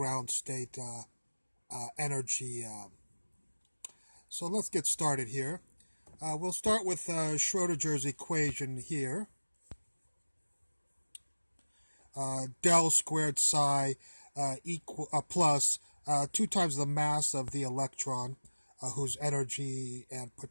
state energy. So let's get started here. We'll start with Schrodinger's equation here. Del squared psi plus 2 times the mass of the electron, whose energy and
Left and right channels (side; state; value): both; inverted; correlation -1.00